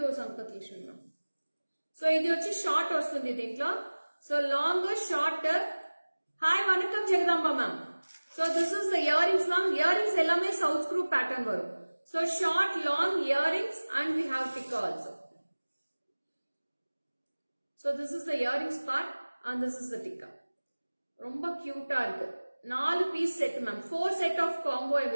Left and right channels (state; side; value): inverted; both; correlation -1.00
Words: Sampath Lakshmi ma'am. So idi vachi short vastundi dintlo. So long, short. Hi vanakkam Jagadamba ma'am. So this is the earrings ma'am. Earrings ellame south screw pattern varum. So short, long earrings and we have tikka also. So this is the earrings part and this is the tikka. Romba cute ah irukku. 4 piece set ma'am. 4 set of combo I